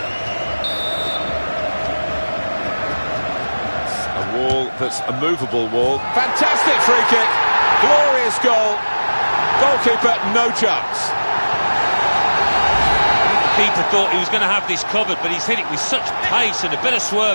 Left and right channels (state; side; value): inverted; both; correlation -1.00